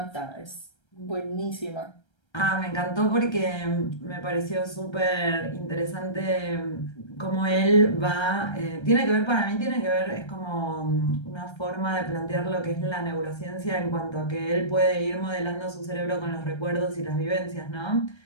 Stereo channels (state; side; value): late; right; 1.3 ms